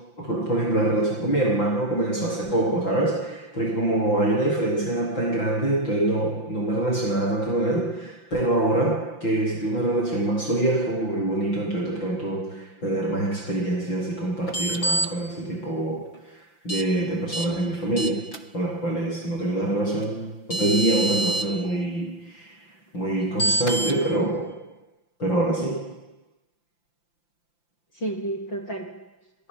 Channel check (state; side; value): late; right; 5.8 ms